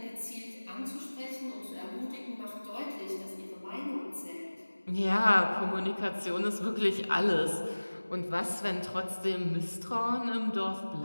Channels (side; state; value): both; inverted; correlation -1.00